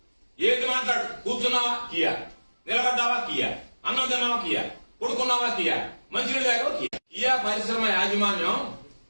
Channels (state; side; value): inverted; both; correlation -1.00